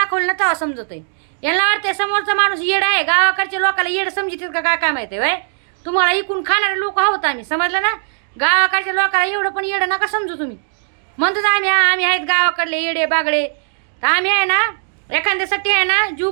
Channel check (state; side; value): silent; left; digital silence